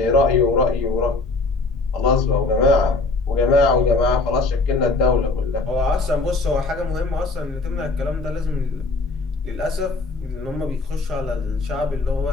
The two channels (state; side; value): quieter; right; 3.5 dB